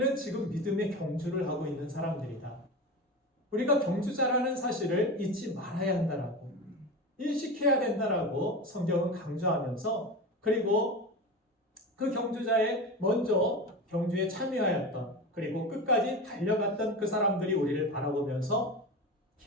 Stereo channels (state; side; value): normal; both; correlation 0.26